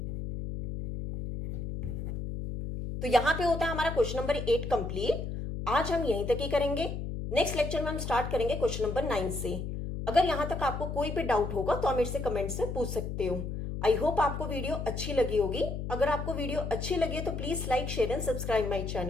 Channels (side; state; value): left; noise; hum, 5 dB below the sound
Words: तो यहां पे होता है हमारा क्वेश्चन नंबर 8 कंप्लीट। आज हम यहीं तक ही करेंगे, नेक्स्ट लेक्चर में हम स्टार्ट करेंगे क्वेश्चन नंबर 9 से। अगर यहां तक आपको कोई भी डाउट होगा तो आप मेरे से कमेंट्स में पूछ सकते हो। आई होप आपको वीडियो अच्छी लगी होगी। अगर आपको वीडियो अच्छी लगी है तो please like, share and subscribe my